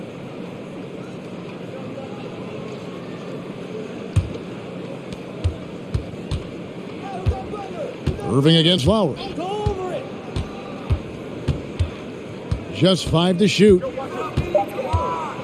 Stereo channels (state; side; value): identical; both; correlation 1.00